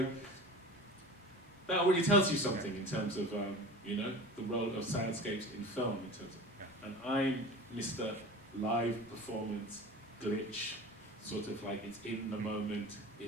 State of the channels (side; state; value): both; normal; correlation 0.35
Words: that already tells you something in terms of, the role of soundscapes in film. In terms of, and I'm Mr. Live Performance Glitch, sort of like it's in the moment.